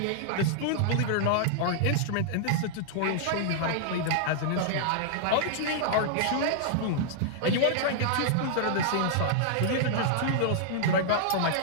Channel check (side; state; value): both; different; correlation -0.01